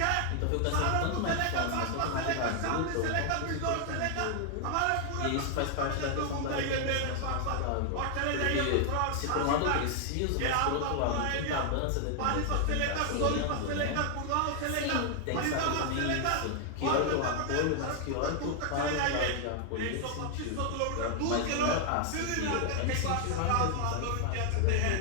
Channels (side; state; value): both; different; correlation 0.00